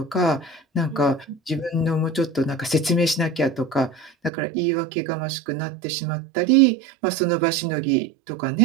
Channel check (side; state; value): left; drops out; at 4.3 s